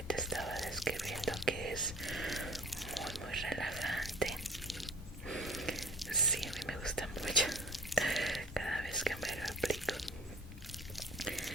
te estaba describiendo, que es muy relajante. Sí, a mí me gusta mucho cada vez que me lo aplico.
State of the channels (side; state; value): both; normal; correlation 0.47